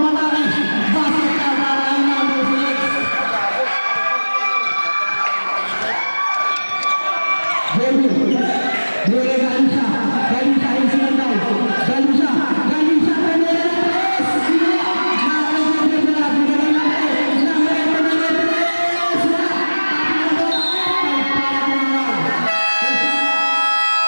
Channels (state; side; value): inverted; both; correlation -1.00